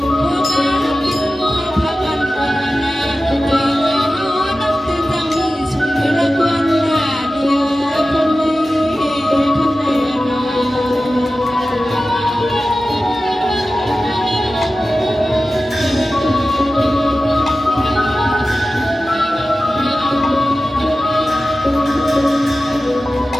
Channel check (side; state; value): both; normal; correlation 0.95